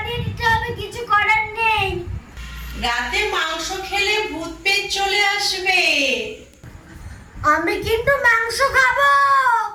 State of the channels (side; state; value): both; identical; correlation 1.00